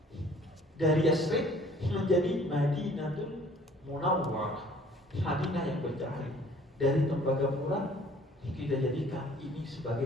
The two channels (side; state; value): both; normal; correlation 0.54